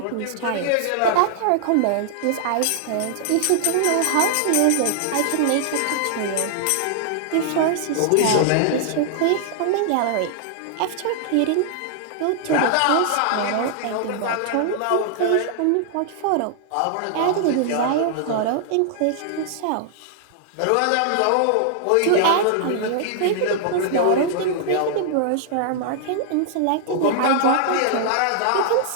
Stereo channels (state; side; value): different; both; correlation -0.01